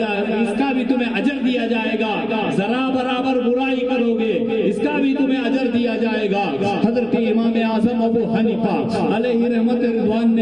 اس کا بھی تمہیں اجر دیا جائے گا، ذرا برابر برائی کرو گے اس کا بھی تمہیں اجر دیا جائے گا۔ حضرت امام اعظم ابو حنیفہ علیہ رحمت رضوان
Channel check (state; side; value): noise; left; hum, 30 dB below the sound